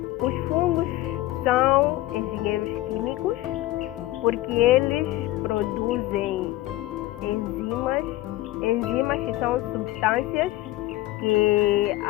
Os fungos são engenheiros químicos porque eles produzem enzimas que são substâncias que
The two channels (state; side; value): quieter; right; 16.7 dB